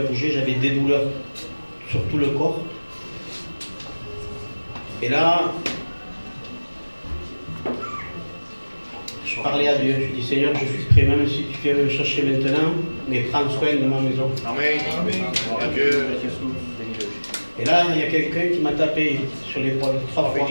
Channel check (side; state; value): both; inverted; correlation -1.00